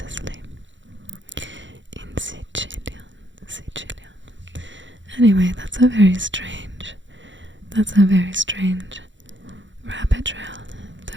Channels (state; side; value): late; left; 0.54 ms